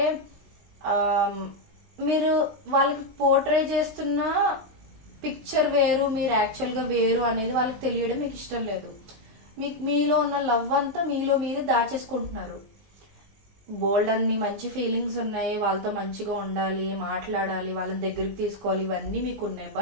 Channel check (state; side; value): late; left; 19 ms